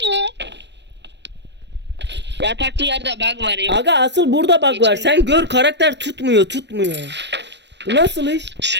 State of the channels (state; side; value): late; left; 0.51 ms